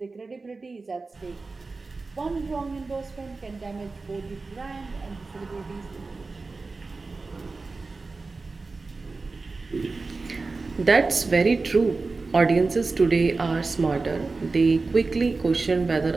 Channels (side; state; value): left; quieter; 3.8 dB